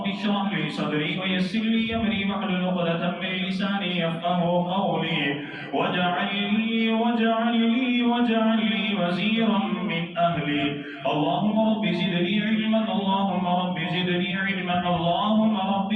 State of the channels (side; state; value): both; identical; correlation 1.00